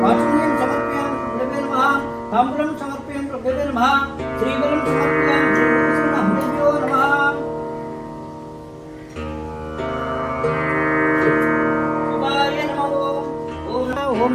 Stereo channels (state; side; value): identical; both; correlation 1.00